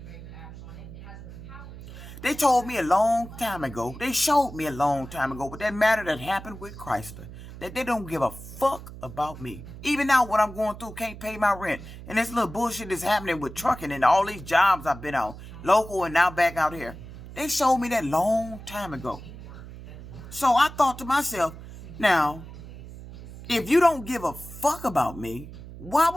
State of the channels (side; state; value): right; noise; hum, 14 dB below the sound